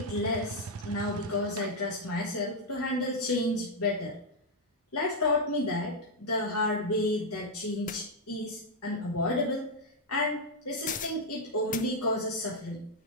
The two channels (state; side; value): normal; both; correlation -0.01